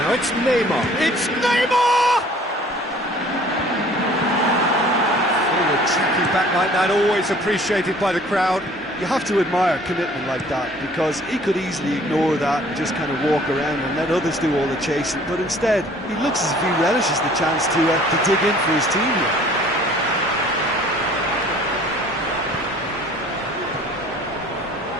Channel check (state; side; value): normal; both; correlation 0.53